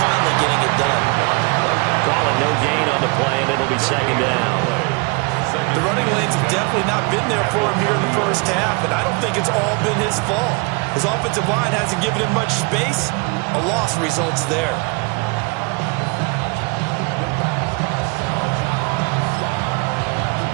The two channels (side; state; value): left; quieter; 30.3 dB